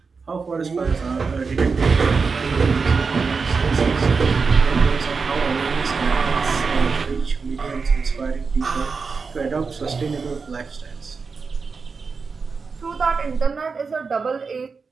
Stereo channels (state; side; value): quieter; left; 4.9 dB